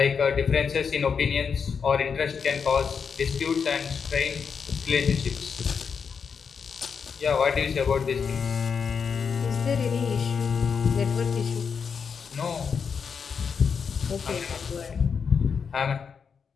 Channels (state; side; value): quieter; right; 6.2 dB